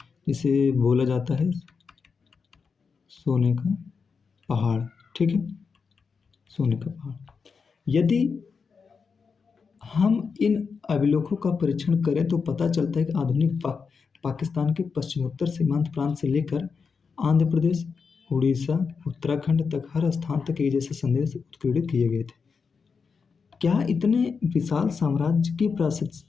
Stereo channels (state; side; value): quieter; right; 5.4 dB